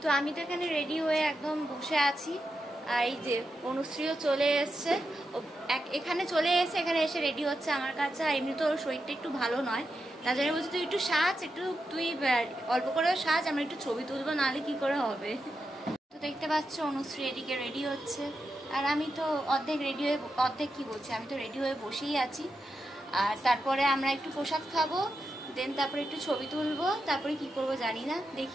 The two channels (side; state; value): both; normal; correlation 0.87